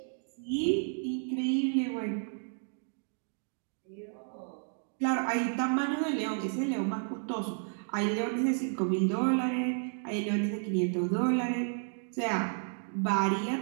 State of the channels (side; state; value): left; silent; 56 dB below the other